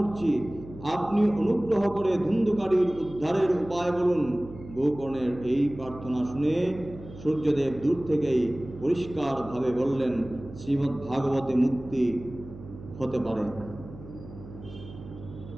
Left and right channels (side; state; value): right; noise; hum, 15 dB below the sound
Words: আপনি অনুগ্রহ করে ধুন্ধুকারীর উদ্ধারের উপায় বলুন। গোকর্ণের এই প্রার্থনা শুনে সূর্যদেব দূর থেকেই পরিষ্কারভাবে বললেন, শ্রীমদ্ ভাগবতে মুক্তি হতে পারে।